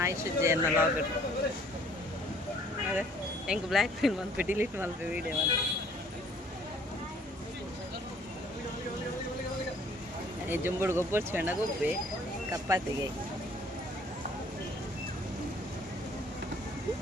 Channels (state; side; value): normal; both; correlation 0.58